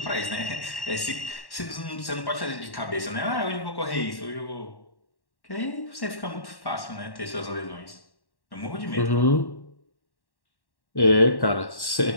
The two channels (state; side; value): late; right; 1.1 ms